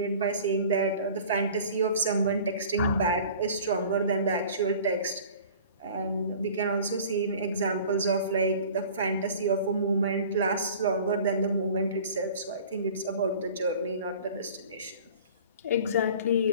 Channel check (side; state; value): both; inverted; correlation -0.44